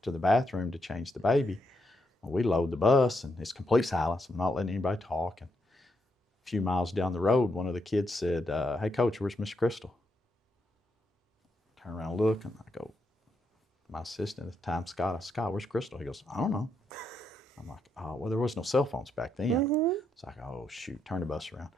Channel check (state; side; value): normal; both; correlation 0.79